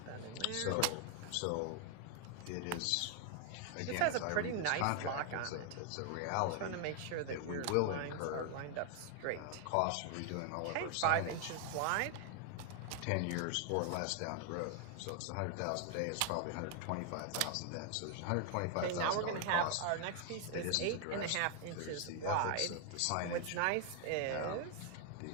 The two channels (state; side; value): different; both; correlation 0.01